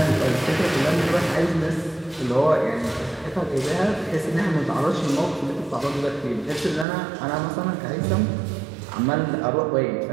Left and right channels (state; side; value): drops out; left; at 6.9 s